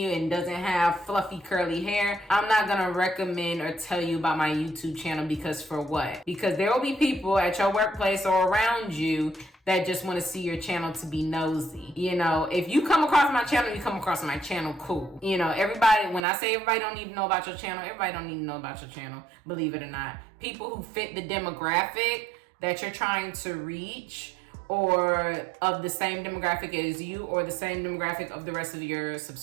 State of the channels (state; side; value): drops out; left; at 16.2 s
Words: and doesn't have fluffy curly hair, I'm not gonna recommend or tell you about my YouTube channel, because for what? Because there will be people at your workplace or around you that just want to see your channel to be nosy. If you come across my channel, you come across my channel, cool. Everybody, when I say everybody don't need to know about your channel, everybody don't need to know about your channel, believe it or not. People who fit the demographic that you're trying to reach, or of the same demographic as you, or the same demographic of the rest of your